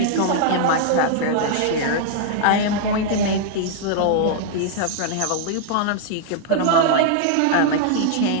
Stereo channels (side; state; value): both; different; correlation -0.01